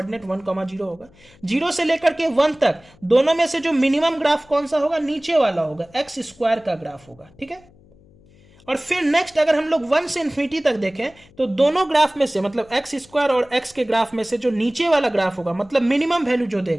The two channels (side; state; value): left; noise; hum, 28 dB below the sound